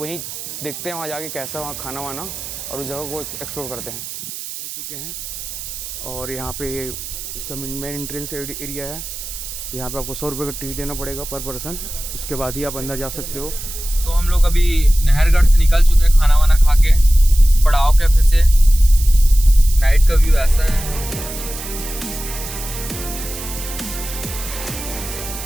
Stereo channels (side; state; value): right; noise; hiss, 10 dB below the sound